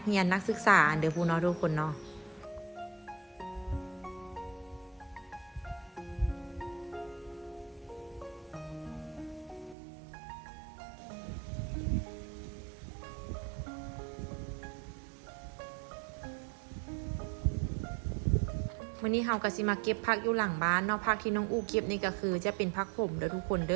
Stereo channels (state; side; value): drops out; left; at 9.8 s